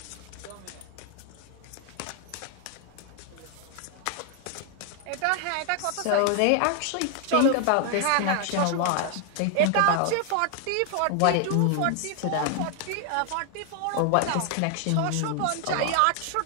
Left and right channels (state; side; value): different; both; correlation 0.00